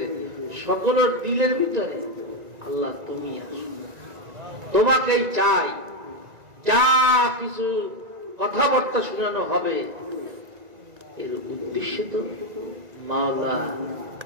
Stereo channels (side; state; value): left; late; 1.9 ms